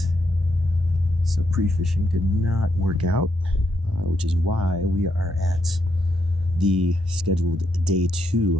So pre-fishing did not work out, which is why we are at the scheduled day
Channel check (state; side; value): normal; both; correlation 0.79